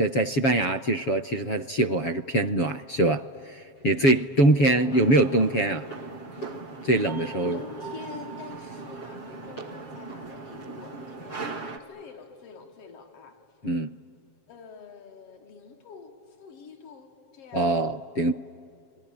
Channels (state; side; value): late; right; 7.4 ms